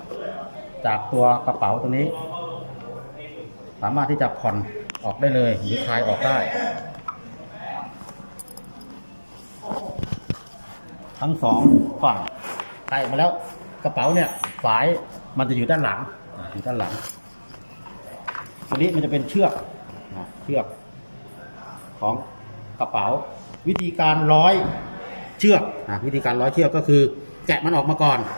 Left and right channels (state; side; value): inverted; both; correlation -1.00